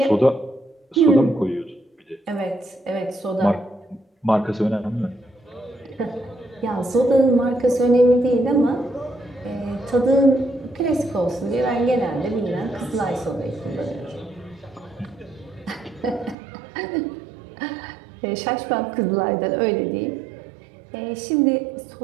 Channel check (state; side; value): drops out; left; at 16.4 s